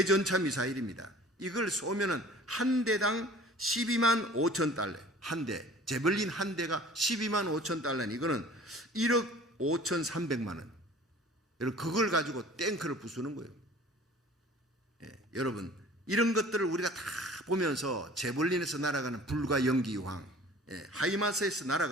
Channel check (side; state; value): both; normal; correlation 0.47